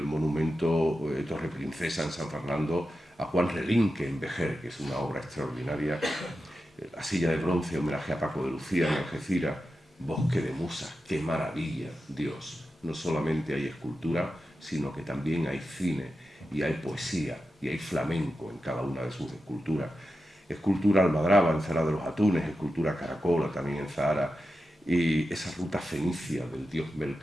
monumento Torre Princesa en San Fernando a Juan Relinque en Vejer, que es una obra extraordinaria, la silla de bronce, homenaje a Paco de Lucía en Algeciras, Bosque de Musas, qué maravilla, Dios. No solamente hay escultura, sino que también hay cine y hay poesía y hay flamenco en cada una de sus esculturas. Escultura Almadraba en Zara de los Atunes, escultura Caracola también en Zahara, y esa ruta fenicia del dios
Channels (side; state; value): both; normal; correlation 0.90